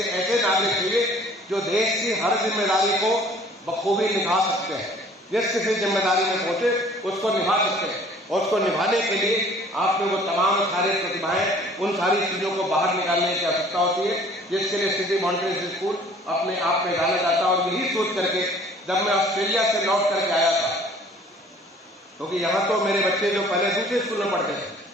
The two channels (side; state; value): both; normal; correlation 0.53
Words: ऐसे नागरिक चाहिए जो देश की हर जिम्मेदारी को बखूबी निभा सकते हैं। जिस किसी जिम्मेदारी में पहुंचे उसको निभा सकते हैं, और उसको निभाने के लिए आप में वो तमाम सारे प्रतिभाएं, उन सारी चीजों को बाहर निकालने की आवश्यकता होती है, जिसके लिए सिटी मॉन्टेसरी स्कूल अपने आप में जाना जाता है। और यही सोच करके जब मैं ऑस्ट्रेलिया से लौट करके आया था, क्योंकि यहाँ तो मेरे बच्चे जो पहले दूसरे स्कूल में पढ़ते थे,